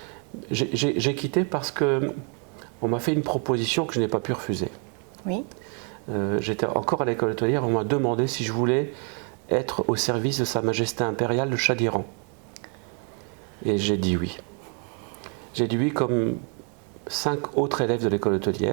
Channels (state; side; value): quieter; left; 40.0 dB